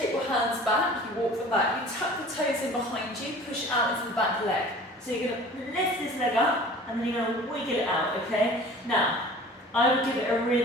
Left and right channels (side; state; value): both; normal; correlation 0.44